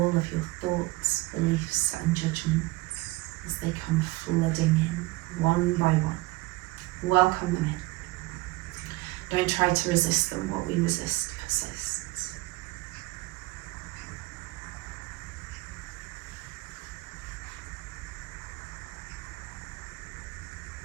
of your thoughts, beliefs and judgments as they come flooding in, one by one. Welcome them in. Don't try to resist them. What we resist persists.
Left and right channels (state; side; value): quieter; left; 20.8 dB